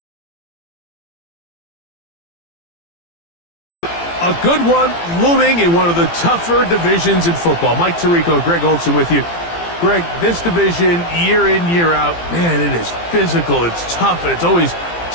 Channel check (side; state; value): right; late; 17 ms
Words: a good one looming in one of the tougher divisions in football. Mike Tirico, Greg Olson with you. Greg, this division, year in, year out, man, it is physical, it's tough, and it's always